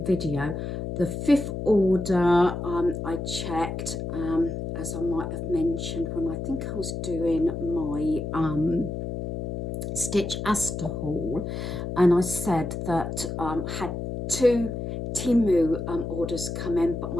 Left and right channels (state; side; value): noise; left; hum, 5 dB below the sound